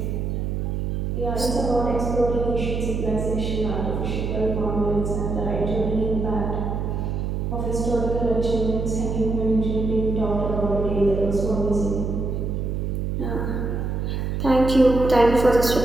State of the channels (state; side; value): noise; right; hum, 1 dB below the sound